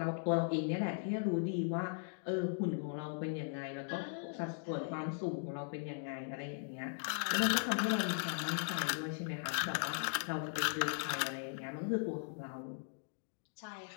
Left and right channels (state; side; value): silent; right; digital silence